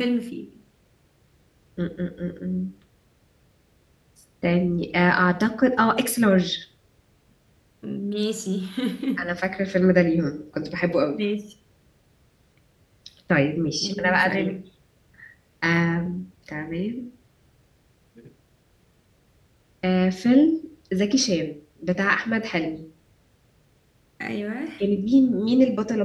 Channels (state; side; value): identical; both; correlation 1.00